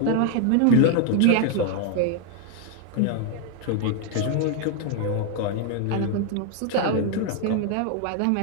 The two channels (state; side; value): different; both; correlation 0.01